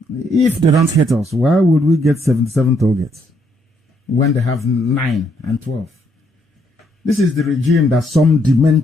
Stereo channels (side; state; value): both; normal; correlation 0.73